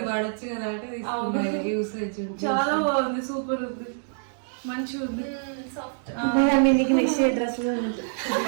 వాడచ్చు కదా అంటే యూసేజ్ చాలా బాగుంది, సూపర్ ఉంది, మంచిగా ఉంది. మీకు నెక్స్ట్ డ్రెస్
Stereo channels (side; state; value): left; silent; digital silence